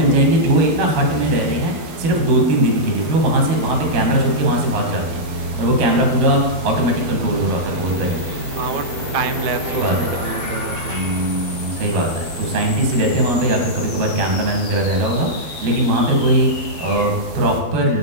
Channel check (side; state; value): left; late; 12 ms